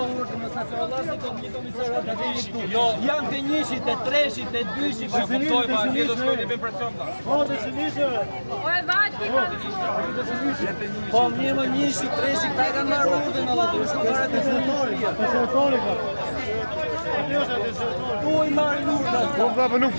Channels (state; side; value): inverted; both; correlation -1.00